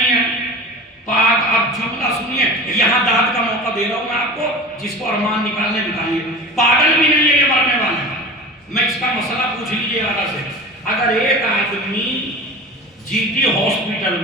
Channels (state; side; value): normal; both; correlation 0.35